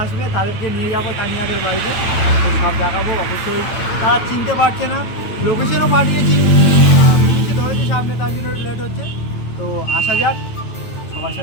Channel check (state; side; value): late; right; 9.0 ms